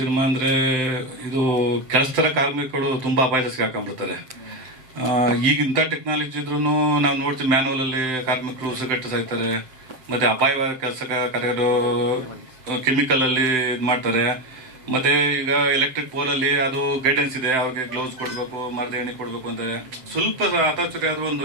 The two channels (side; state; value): left; late; 7.8 ms